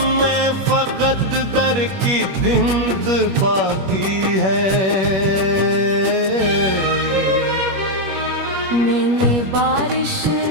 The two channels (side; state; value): left; late; 21 ms